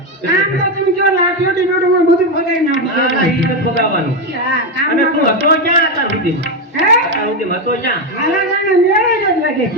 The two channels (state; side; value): normal; both; correlation 0.09